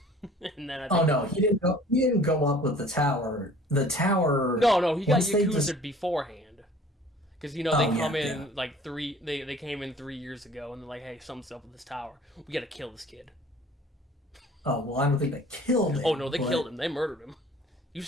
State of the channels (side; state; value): both; normal; correlation 0.50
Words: and then I Oh think no, he didn't go. He didn't go up with the tower. The tower. no, he got Once they just. Yakuza beforehand, because they Oh come yeah, yeah. in like they came in 3 years ago, and they're like, hey, something's up with this tower. We gotta kill this kid. Oh well, I don't think they killed Oh no, him, they killed but him. They murdered him. You